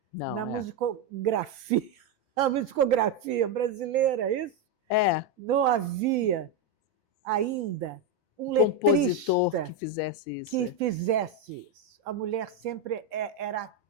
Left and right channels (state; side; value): quieter; left; 3.1 dB